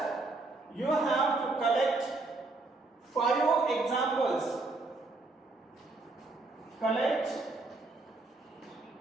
you have to collect 5 examples. Collect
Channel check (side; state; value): left; quieter; 3.4 dB